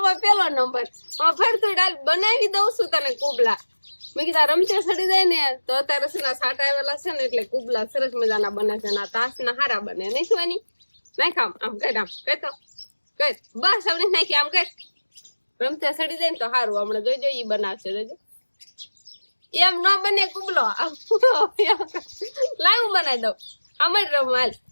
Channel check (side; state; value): both; inverted; correlation -1.00